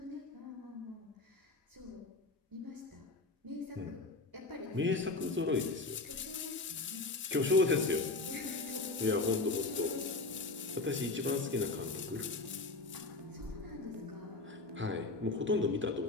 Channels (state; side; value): quieter; right; 3.4 dB